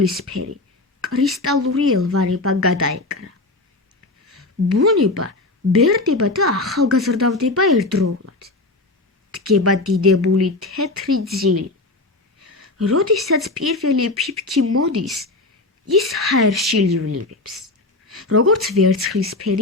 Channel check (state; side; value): quieter; right; 3.0 dB